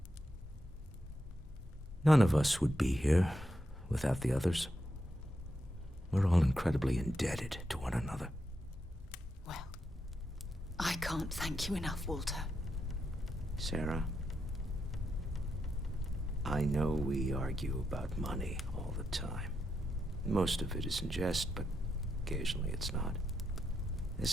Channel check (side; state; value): both; normal; correlation 0.83